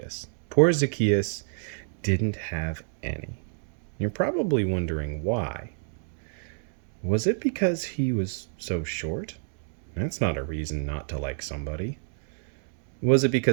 Poor Zacchaeus didn't have any. You're probably wondering why. Was it because he was so short? That's not a reason not to like somebody. Was it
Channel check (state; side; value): silent; left; 59 dB below the other